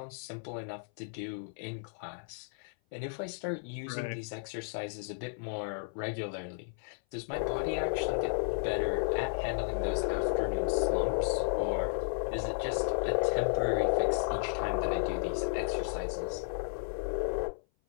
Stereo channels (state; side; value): silent; right; 55 dB below the other